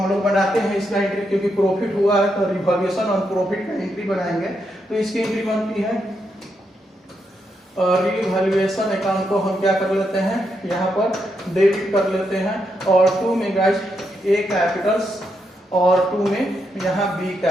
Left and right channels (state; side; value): normal; both; correlation 0.81